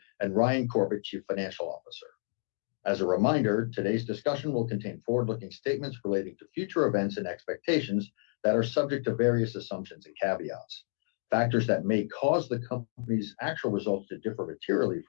and Ryan Corbett, Chief Financial Officer. As a reminder, today's discussion will contain forward-looking statements relating to future events and expectations that are subject to various assumptions and caveats. Factors that may cause the company's actual results to differ materially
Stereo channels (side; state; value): right; silent; 58 dB below the other